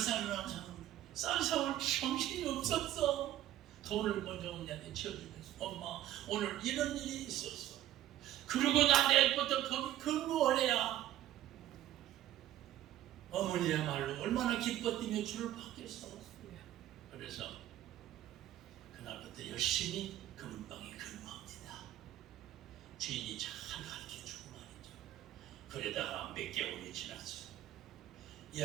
정신이 없었어. 돈을 먼저 언니한테 치워주면서 엄마 오늘 이런 일이 있었어. 그리고 나 내일부터 거기 근무하래야. 어머니야말로 얼마나 기뻐 뛰며 주를 받겠어. 그래서 그날부터 열심히 금은방에 근무합니다. 주인이 잘 가르쳐주고 말이죠. 그러다가 몇 개월이 지났어요. 이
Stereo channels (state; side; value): quieter; left; 12.9 dB